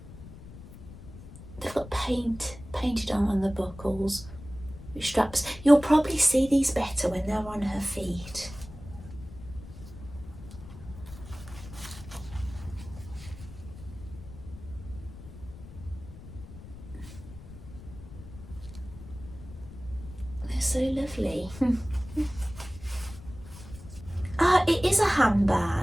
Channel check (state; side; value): noise; left; rumble, 15 dB below the sound